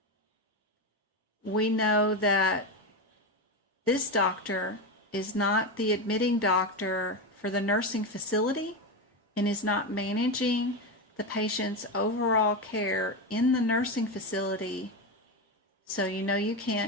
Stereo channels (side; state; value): both; normal; correlation 0.14